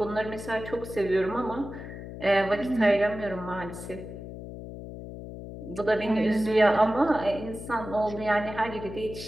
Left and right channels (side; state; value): left; noise; hum, 11 dB below the sound